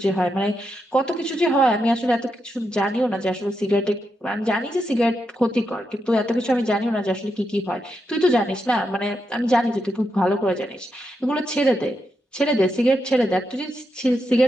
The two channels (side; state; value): both; normal; correlation 0.84